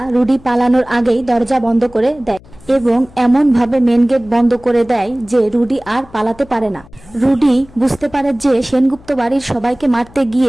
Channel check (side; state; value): left; noise; hum, 24 dB below the sound